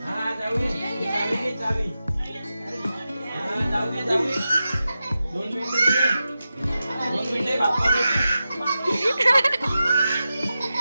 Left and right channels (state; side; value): inverted; both; correlation -0.92